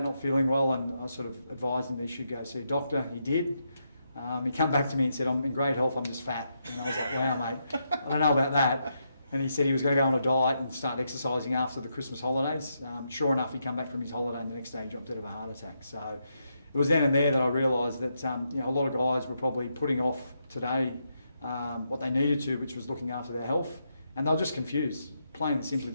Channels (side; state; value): both; inverted; correlation -0.81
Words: not feeling well, and I sort of advised him that he should go see a doctor. He did. He came back to me and said, "I'm in great health, I'm just fat." And I was like, "Wow, mate, I don't know about that." And he said he was going to go on a diet and start exercising after the Christmas holidays. Sure enough, he came back from his holiday and the next day he dropped dead of a heart attack. So it was then and there that I realised that a lot of guys were probably putting off today what they needed to, which was looking after their health. And they were just confused, plain and simply.